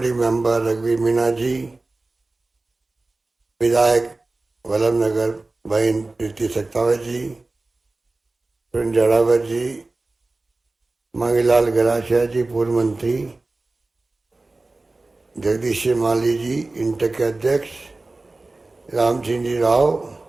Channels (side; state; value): left; quieter; 3.2 dB